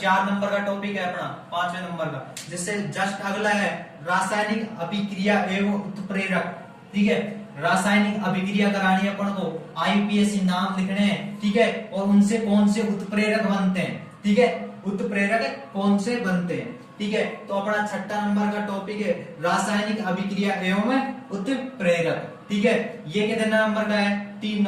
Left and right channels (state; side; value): identical; both; correlation 1.00